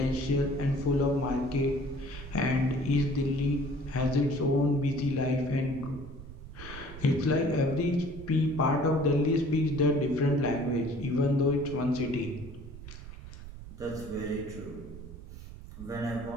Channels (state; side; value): noise; right; rumble, 13 dB below the sound